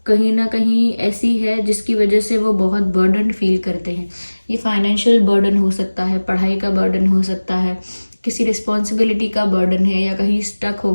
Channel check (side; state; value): both; inverted; correlation -1.00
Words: कहीं ना कहीं ऐसी है जिसकी वजह से वो बहुत बर्डन फील करते हैं। ये फाइनेंशियल बर्डन हो सकता है, पढ़ाई का बर्डन हो सकता है, किसी रिस्पॉन्सिबिलिटी का बर्डन है, या कहीं स्टक हो